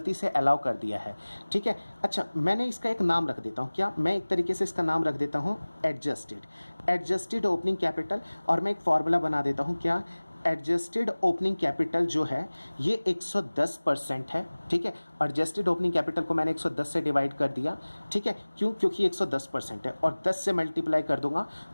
से अलाउ कर दिया है। ठीक है, अच्छा मैंने इसका एक नाम रख देता हूँ, क्या मैं एक तरीके से इसका नाम रख देता हूँ एडजस्टेड ओपनिंग कैपिटल, और मैं एक फॉर्मूला बना देता हूँ क्या, एडजस्टेड ओपनिंग कैपिटल जो है ये 110% है। ठीक है, एडजस्टेड ओपनिंग कैपिटल को मैंने 110 से डिवाइड कर दिया। ठीक है, क्यों, क्योंकि 110% है, और 10 से मल्टीप्लाई कर दूंगा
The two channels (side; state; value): both; inverted; correlation -1.00